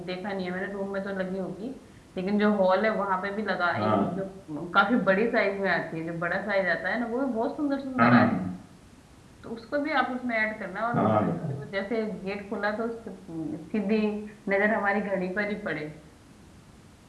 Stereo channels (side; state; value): both; identical; correlation 1.00